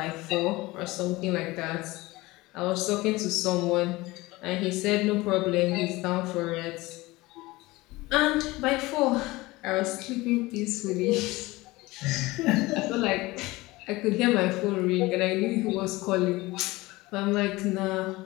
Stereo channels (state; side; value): quieter; right; 20.6 dB